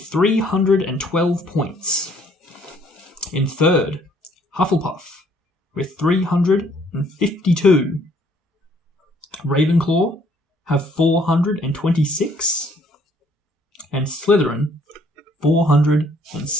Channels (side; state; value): both; normal; correlation 0.63